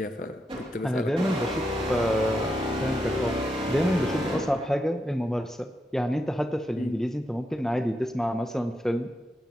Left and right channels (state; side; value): normal; both; correlation 0.84